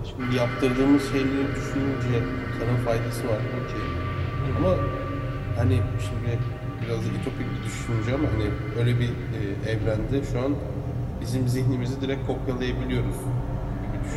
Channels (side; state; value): both; identical; correlation 1.00